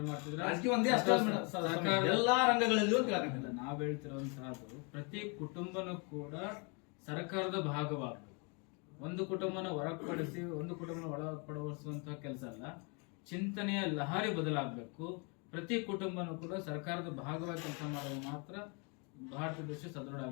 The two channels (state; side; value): quieter; right; 34.0 dB